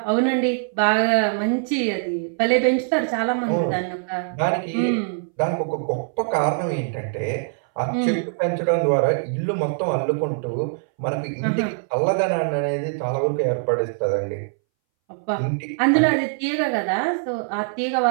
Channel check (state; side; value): silent; left; 62 dB below the other